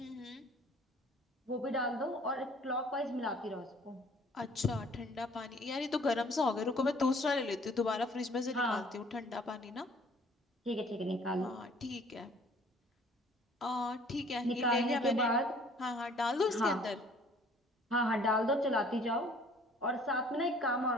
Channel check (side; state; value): both; normal; correlation 0.55